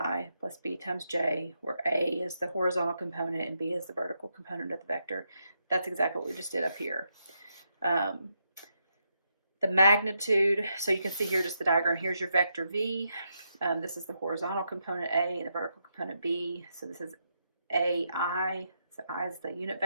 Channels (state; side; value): inverted; both; correlation -0.81